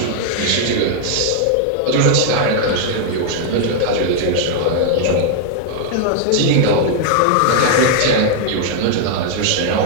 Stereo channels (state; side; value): different; both; correlation 0.00